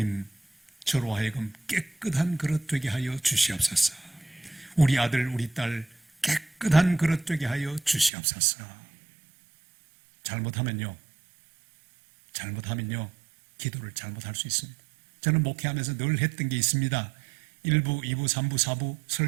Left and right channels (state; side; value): drops out; left; at 8.1 s